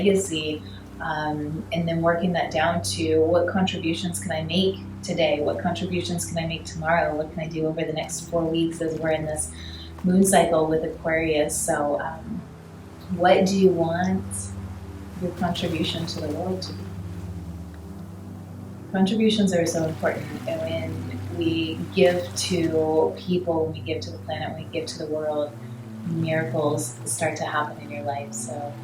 and then working that down to what contributions can I make today? What contributions can I make tomorrow? What can I do over the next 4 weeks as we're in this moon cycle with Aquarius? So what do you want your contribution to the world to be? Contributions are so important, and when we give to people, when we give to the planet, when we give to the world, miracles start to happen in your life. So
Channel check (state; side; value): identical; both; correlation 1.00